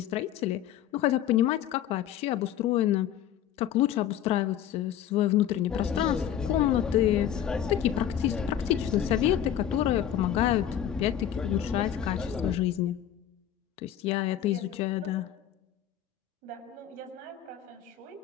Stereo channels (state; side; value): quieter; right; 10.4 dB